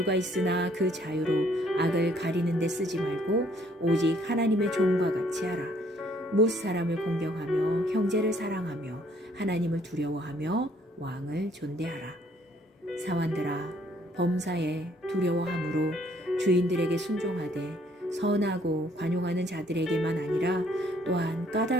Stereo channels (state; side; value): normal; both; correlation 0.64